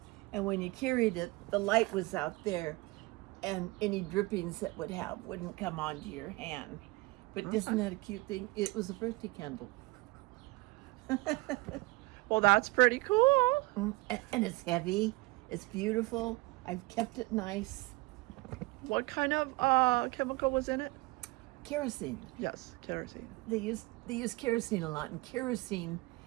and when you carried it, the light was out there, and any drippings that wouldn't come onto your hand. But isn't that a cute thing? It was a birthday candle. Well, that's pretty cool. And it's heavy. It's beautiful. I've kept it nice. What kind of chemical was in it? Kerosene. Yes, kerosene. They use kerosene a lot, and kerosene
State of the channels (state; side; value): quieter; left; 22.8 dB